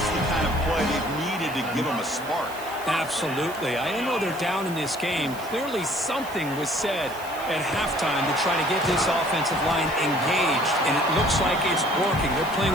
the kind of play they've needed to give them a spark. Absolutely. I know they're down in this game. Clearly something was said at halftime to try to get this offensive line engaged, and it looks like it's working. They're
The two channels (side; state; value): right; noise; hiss, 17 dB below the sound